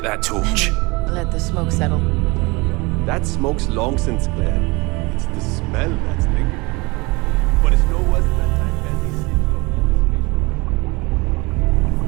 that torch? Let the smoke settle. That smoke's long since cleared. It's the smell that's lingering. But it's no worse than that time Bendy saved your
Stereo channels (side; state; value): left; quieter; 25.3 dB